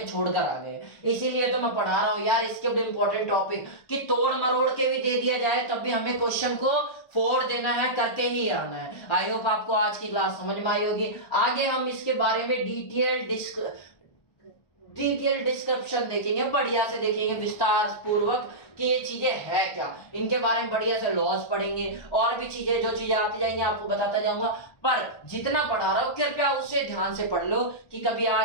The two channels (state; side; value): late; right; 1.3 ms